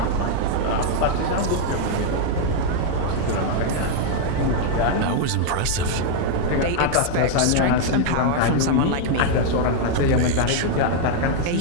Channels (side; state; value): both; different; correlation 0.00